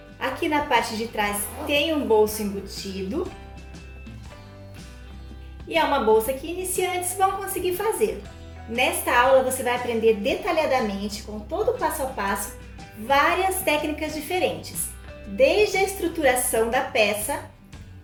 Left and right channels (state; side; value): identical; both; correlation 1.00